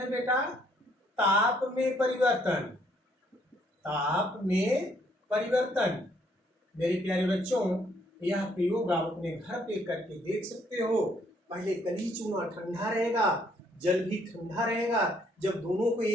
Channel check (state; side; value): normal; both; correlation 0.67